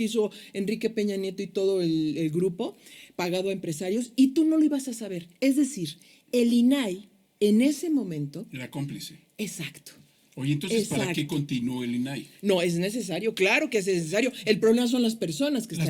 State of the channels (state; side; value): identical; both; correlation 1.00